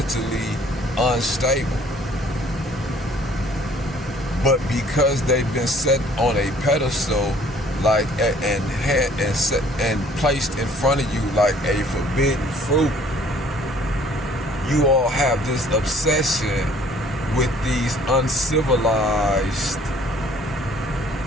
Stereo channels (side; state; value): both; normal; correlation 0.57